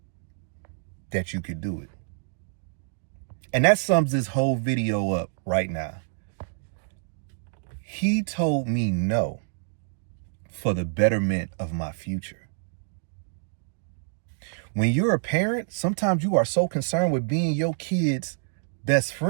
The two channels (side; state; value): left; silent; digital silence